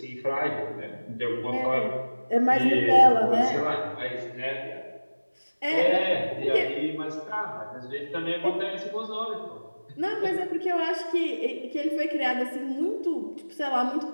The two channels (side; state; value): both; inverted; correlation -1.00